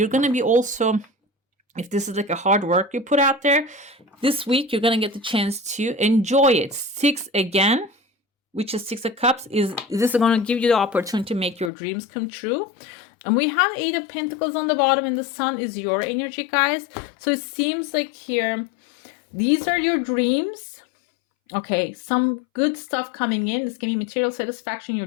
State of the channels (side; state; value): right; drops out; at 11.7 s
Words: going to be also, if this is like a hard work you put out there, this week you're going to get the chance to enjoy it. 6 again, which is 6 of Cups, is this is going to give you the opportunity to make your dreams come true. And we have 8 of Pentacles on the bottom, and the Sun is your energy, guys. So it seems like here, these are your dreams. Okay, some good stuff coming in. This can be material satisfaction. Your